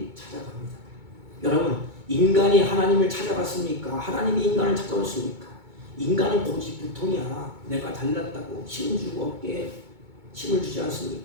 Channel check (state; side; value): late; left; 2.2 ms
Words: 찾아갑니다. 여러분, 인간이 하나님을 찾아갔습니까? 하나님이 인간을 찾아왔습니까? 인간은 고집부통이야. 내가 잘났다고 힘 주고 어깨에 힘을 주지